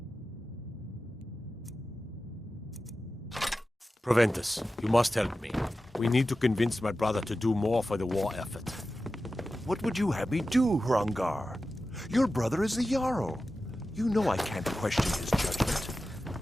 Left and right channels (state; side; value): normal; both; correlation 0.93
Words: Proventus, you must help me. We need to convince my brother to do more for the war effort. What would you have me do, Hrongar? Your brother is the Jarl. You know I can't question his judgment.